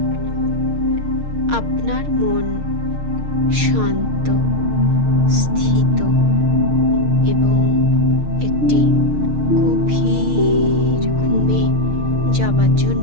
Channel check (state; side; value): late; left; 6.5 ms